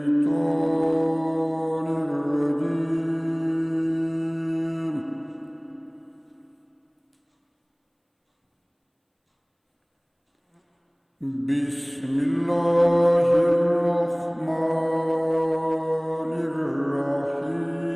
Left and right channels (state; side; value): identical; both; correlation 1.00